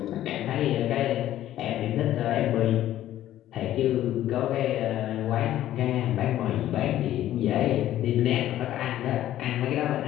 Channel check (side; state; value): right; quieter; 13.0 dB